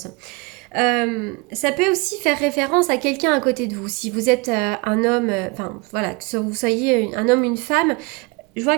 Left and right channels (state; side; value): quieter; left; 26.8 dB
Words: Ça peut aussi faire référence à quelqu'un à côté de vous. Si vous êtes un homme, enfin voilà, que vous soyez un homme, une femme, je